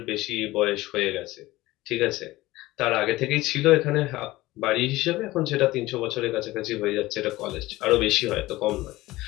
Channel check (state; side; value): quieter; right; 18.3 dB